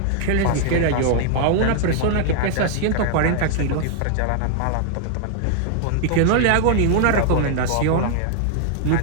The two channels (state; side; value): different; both; correlation -0.01